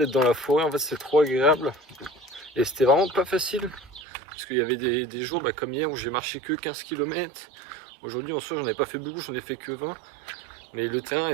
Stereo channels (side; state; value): left; drops out; at 4.0 s